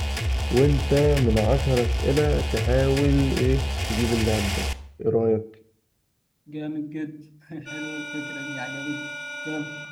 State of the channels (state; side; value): identical; both; correlation 1.00